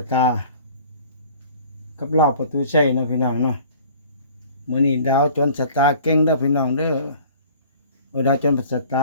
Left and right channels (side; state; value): both; inverted; correlation -0.49